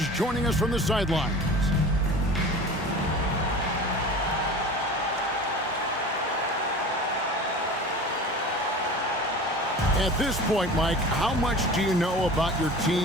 joining us from the sidelines. At this point, Mike, how much do you know about your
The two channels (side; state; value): both; normal; correlation 0.37